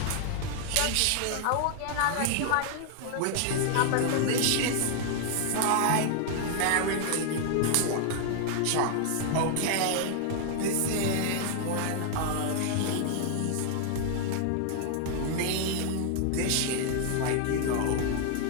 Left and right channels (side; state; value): both; different; correlation 0.00